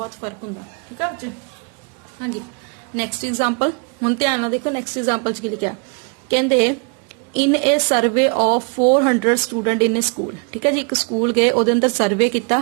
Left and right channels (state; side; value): quieter; left; 34.7 dB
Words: ਫਰਕ ਹੁੰਦਾ, ਠੀਕ ਹੈ ਬੱਚੇ। ਹਾਂਜੀ, ਨੈਕਸਟ ਐਗਜ਼ਾਮਪਲ ਹੁਣ ਧਿਆਨ ਨਾਲ ਦੇਖੋ। ਨੈਕਸਟ ਐਗਜ਼ਾਮਪਲ 'ਚ ਕੀ ਲਿਖਿਆ, ਕਹਿੰਦੇ in a survey of 400 student in a school. ਠੀਕ ਹੈ ਜੀ, ਇੱਕ ਸਕੂਲ ਗਏ, ਉਹਦੇ ਅੰਦਰ ਸਰਵੇ ਕੀਤਾ,